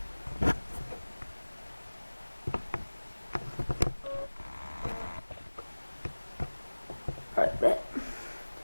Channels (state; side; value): inverted; both; correlation -1.00